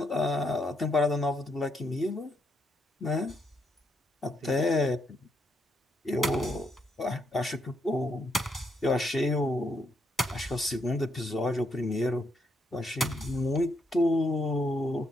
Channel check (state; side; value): normal; both; correlation 0.77